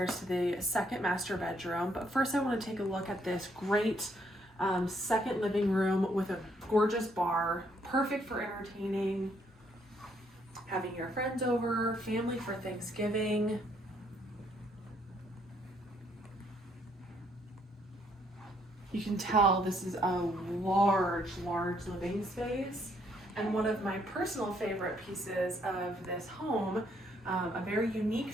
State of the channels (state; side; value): normal; both; correlation 0.70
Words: to the second master bedroom, but first I want to take a look at this great second living room with a gorgeous bar, perfect for entertaining, having your friends over, family for Thanksgiving. You can tell this is a large living space. And one of my personal favorite pieces of this home, a very unique